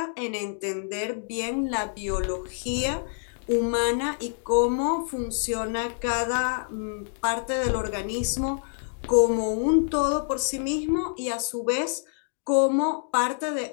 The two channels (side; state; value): right; silent; 60 dB below the other